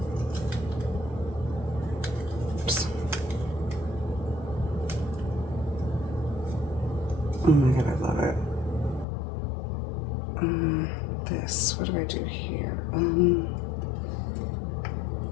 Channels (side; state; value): right; drops out; at 9.1 s